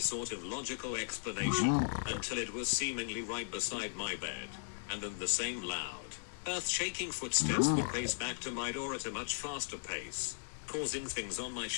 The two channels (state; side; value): silent; right; digital silence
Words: of logical explanation, until it was seemingly right beside my bed. And then the same loud, earth-shaking footsteps would pace back to my door at a much faster pace, causing things on my